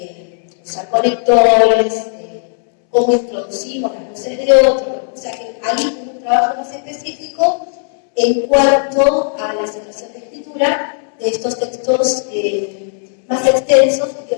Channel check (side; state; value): right; silent; 68 dB below the other